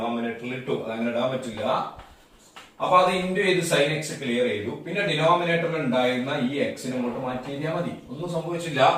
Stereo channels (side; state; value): both; identical; correlation 1.00